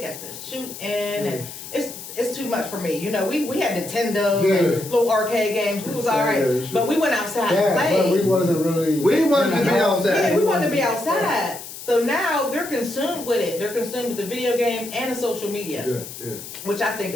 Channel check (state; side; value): noise; left; hiss, 12 dB below the sound